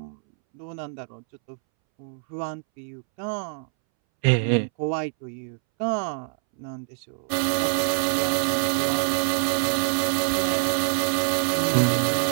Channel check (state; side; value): silent; left; 62 dB below the other